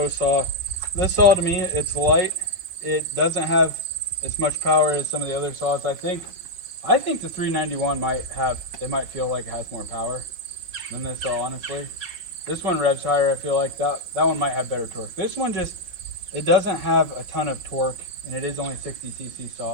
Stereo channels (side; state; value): left; late; 5.5 ms